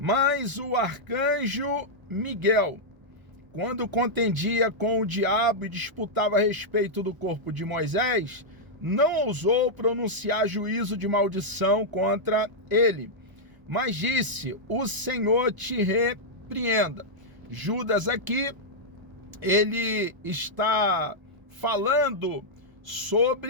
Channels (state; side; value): late; left; 1.0 ms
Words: o arcanjo Miguel, quando contendia com o diabo e disputava a respeito do corpo de Moisés, não ousou pronunciar juízo de maldição contra ele, mas disse: o Senhor te repreenda. Judas aqui, ele está falando